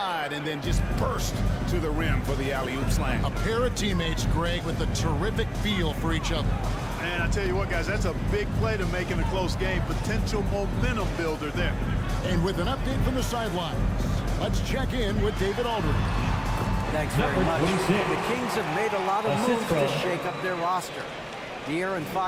and then just burst to the rim for the alley-oop slam. A pair of teammates, Greg, with a terrific feel for each other. And I tell you what, guys, that's a big play to make in a close game. Potential momentum builder there. And with an update from the sidelines, let's check in with David Aldridge. Thanks very much. The Kings have made a lot of moves to shake up their roster. De'Aaron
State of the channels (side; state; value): both; identical; correlation 1.00